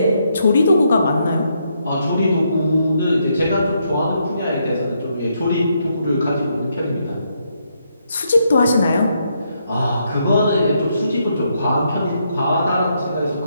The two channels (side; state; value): both; inverted; correlation -0.77